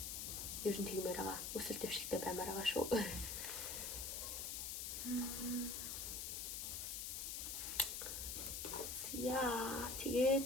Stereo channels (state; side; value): noise; left; hiss, 3 dB below the sound